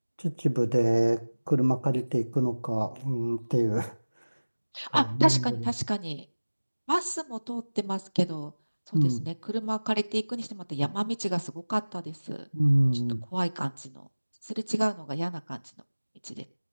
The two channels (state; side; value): inverted; both; correlation -1.00